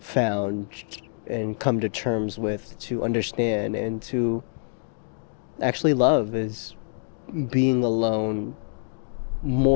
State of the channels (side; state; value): right; silent; digital silence